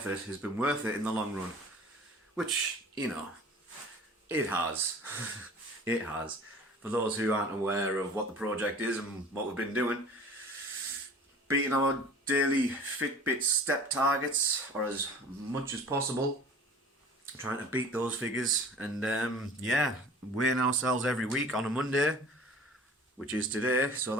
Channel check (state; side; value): normal; both; correlation 0.44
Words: has been worth it in the long run. Which, it has. It has. For those who aren't aware of what the project is and what we've been doing, beating our daily Fitbit step targets, or as much as possible, trying to beat those figures, and weighing ourselves every week on a Monday, which is today, so